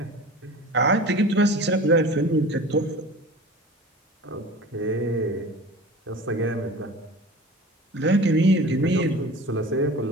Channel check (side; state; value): both; normal; correlation 0.38